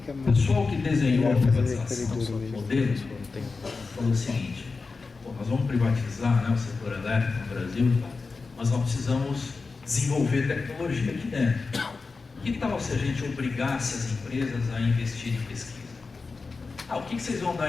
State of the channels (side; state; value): right; quieter; 4.3 dB